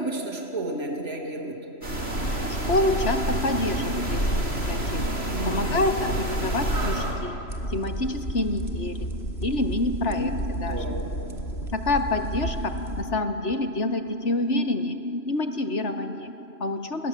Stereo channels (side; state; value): right; late; 3.0 ms